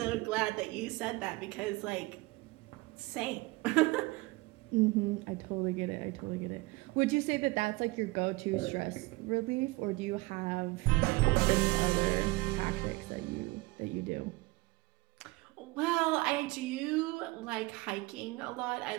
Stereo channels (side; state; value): left; quieter; 22.5 dB